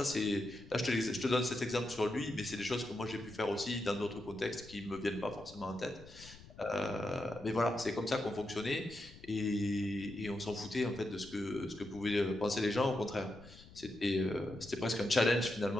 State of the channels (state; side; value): noise; left; rumble, 19 dB below the sound